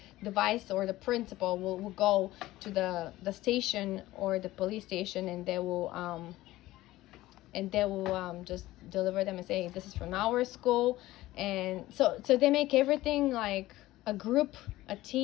the vice or the principal will go to the station or the police station, and they will just deliver them and say, this is from our school. And so they make everything like a group, a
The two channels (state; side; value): quieter; right; 16.8 dB